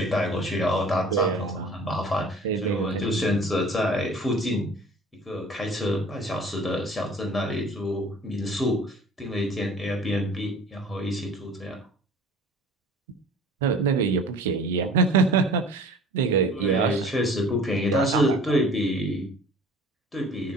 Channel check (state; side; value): normal; both; correlation 0.47